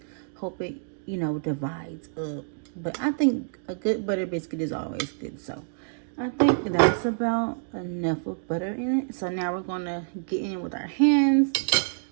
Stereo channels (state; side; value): silent; left; digital silence